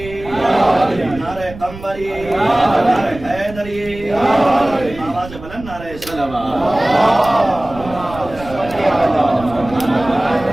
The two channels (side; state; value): right; noise; rumble, 15 dB below the sound